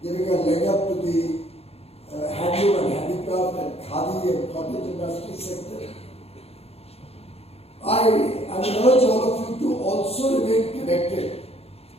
giving a leg up to the handloom and handicraft and khadi and cottage industry sector. I would urge all of you to also remain connected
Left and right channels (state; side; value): late; right; 0.29 ms